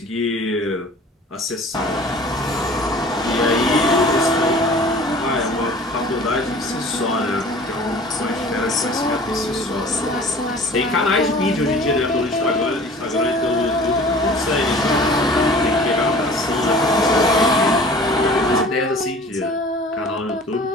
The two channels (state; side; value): normal; both; correlation 0.46